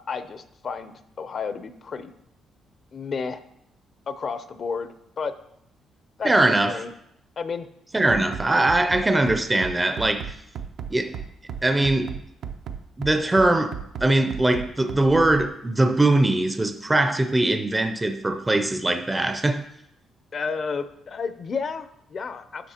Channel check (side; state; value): both; normal; correlation 0.93